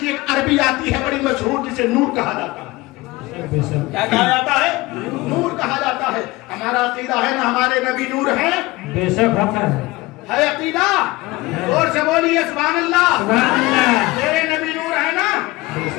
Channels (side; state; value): right; quieter; 20.6 dB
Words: एक अरबी आती है बड़ी मशहूर, जिसे नूर कहा जाता है। क्या कहा जाता है? नूर कहा जाता है। हमारा अकीदा है ना हमारे नबी नूर है। बेशक है अकीदा। और से बोलिए सुभान अल्लाह। मेरे नबी नूर है ना,